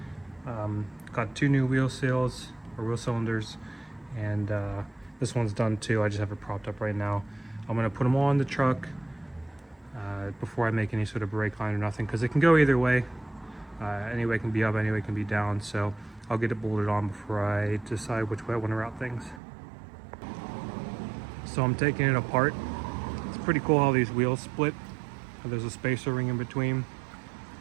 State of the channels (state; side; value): drops out; left; at 19.4 s